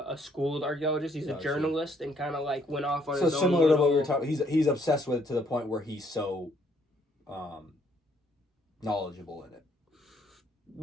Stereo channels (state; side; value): normal; both; correlation 0.67